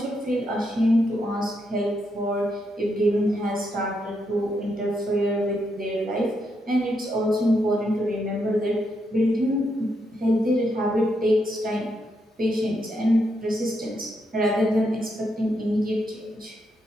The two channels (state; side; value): normal; both; correlation 0.80